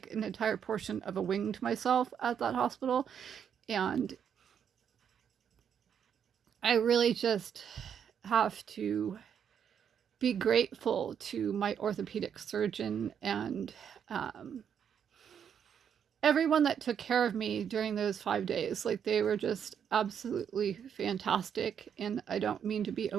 an entire portion of a wing to myself at that hospital. And I really just have to be grateful to my orthopedic surgeon and everyone that took care of me during those 5 days. Like, they were just absolutely fantastic. And I don't mean to be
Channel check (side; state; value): left; quieter; 8.1 dB